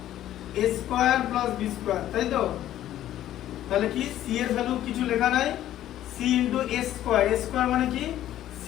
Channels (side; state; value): right; quieter; 12.7 dB